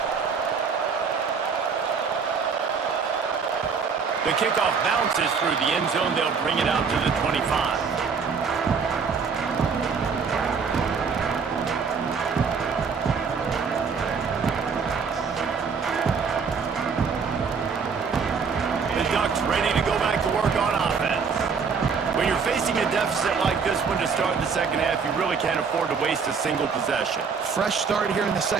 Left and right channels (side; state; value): left; quieter; 5.7 dB